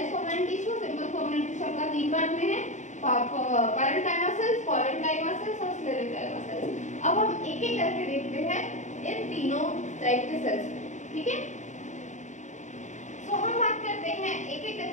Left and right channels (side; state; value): right; late; 0.35 ms